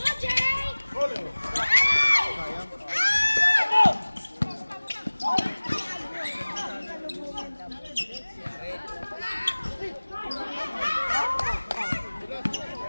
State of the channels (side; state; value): both; inverted; correlation -1.00